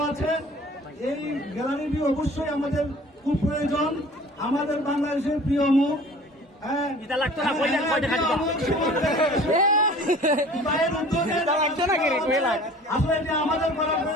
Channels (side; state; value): both; normal; correlation 0.46